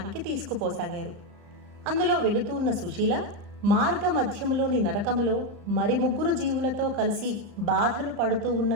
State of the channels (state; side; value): late; left; 34 ms